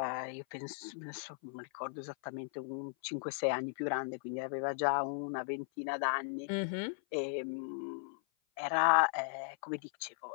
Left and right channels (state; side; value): silent; right; 53 dB below the other